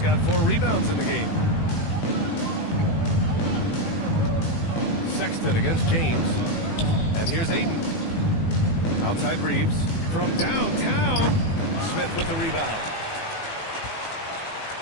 got 4 rebounds in the game. Sexton against James. And here's Ayton. Outside Reeves. From downtown. Smith with the rebound.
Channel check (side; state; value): right; late; 18 ms